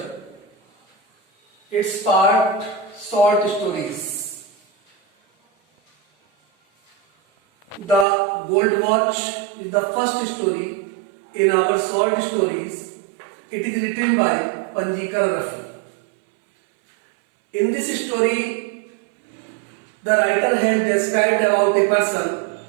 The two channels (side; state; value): left; drops out; at 8.1 s